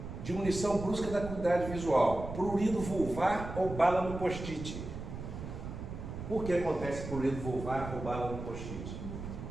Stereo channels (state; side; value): noise; right; rumble, 8 dB below the sound